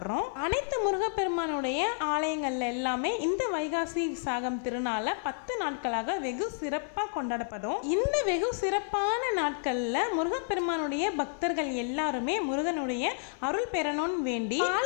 அனைத்து முருகப்பெருமானுடைய ஆலயங்கள்ல எல்லாமே இந்த வைகாசி விசாக திருநாள 10 நாட்களாக வெகு சிறப்பாக கொண்டாடப்படும். இந்த வெகு சிறப்பான நாட்கள்ல முருகப்பெருமானுடைய பக்தர்கள் எல்லாருமே முருகனுடைய அருள் பெறணும்னு வேண்டி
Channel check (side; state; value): right; silent; 58 dB below the other